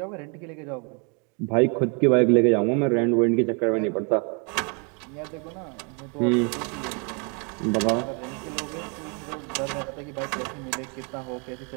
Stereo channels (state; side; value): quieter; left; 35.4 dB